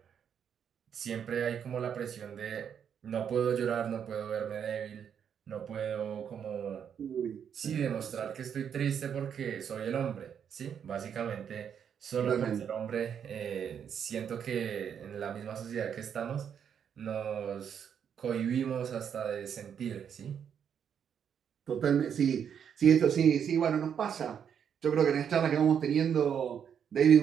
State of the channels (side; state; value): left; quieter; 8.0 dB